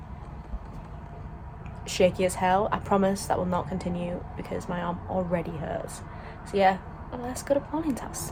shaky as hell. I promise that will not continue because my arm already hurts. So yeah, let's go to Pauline's house.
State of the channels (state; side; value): identical; both; correlation 1.00